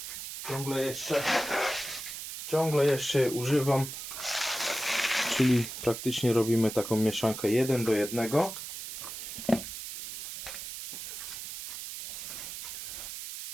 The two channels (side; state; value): right; noise; hiss, 8 dB below the sound